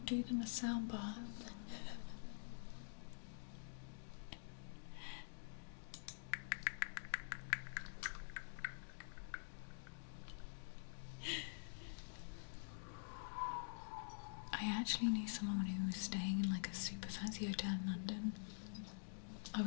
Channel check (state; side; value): silent; right; digital silence